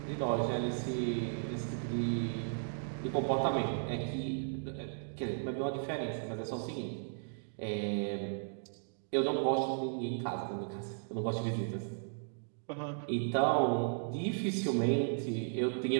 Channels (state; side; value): silent; left; digital silence